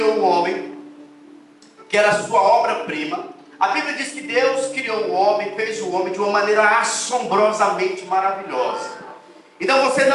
o homem, que era a sua obra-prima? A Bíblia diz que Deus criou o homem, fez o homem de uma maneira assombrosamente maravilhosa. Então você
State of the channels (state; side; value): identical; both; correlation 1.00